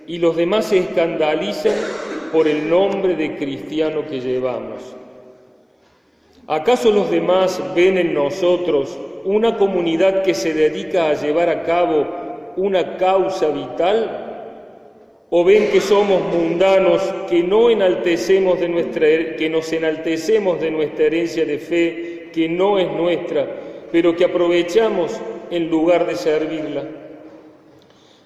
y los demás se escandalizan por el nombre de cristiano que llevamos. ¿Acaso los demás ven en nosotros una comunidad que se dedica a llevar a cabo una causa vital? ¿O ven que somos mundanos, que nos enaltecemos de nuestra herencia de fe, que no es nuestra, pero que aprovechamos en lugar de servirla?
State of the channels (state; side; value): identical; both; correlation 1.00